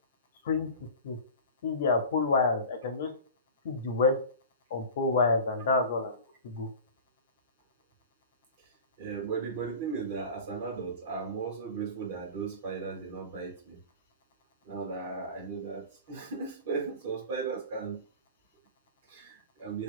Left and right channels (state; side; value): inverted; both; correlation -0.35